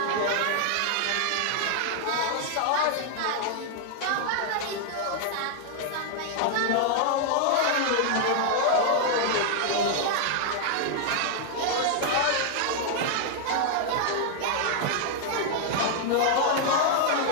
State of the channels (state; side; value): different; both; correlation 0.00